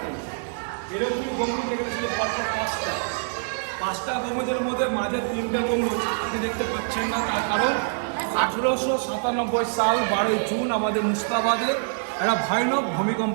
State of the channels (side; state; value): left; silent; digital silence